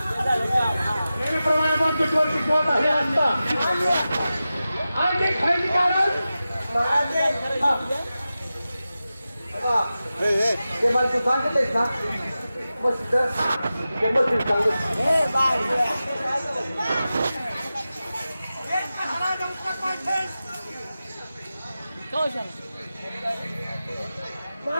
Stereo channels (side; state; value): both; inverted; correlation -0.94